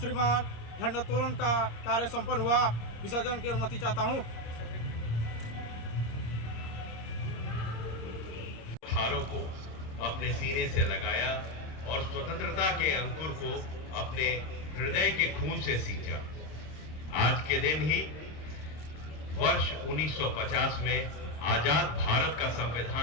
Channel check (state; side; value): late; right; 26 ms